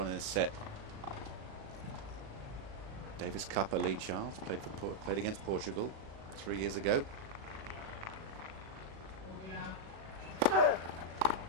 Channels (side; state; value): left; late; 37 ms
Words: in the set. Davis Cupper, Lee Childs, played against Portugal 3 years ago.